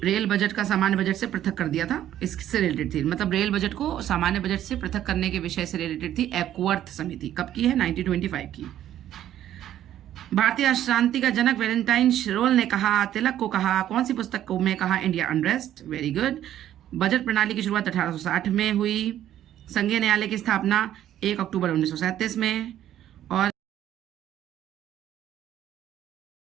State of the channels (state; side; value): quieter; left; 11.8 dB